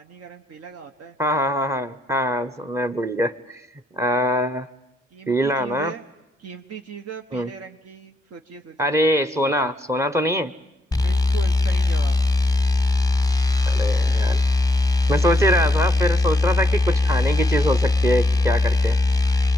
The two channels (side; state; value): both; normal; correlation 0.77